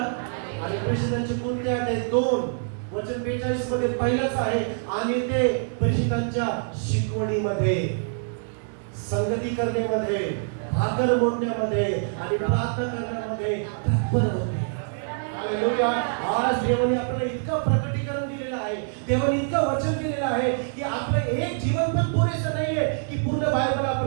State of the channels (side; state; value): left; silent; digital silence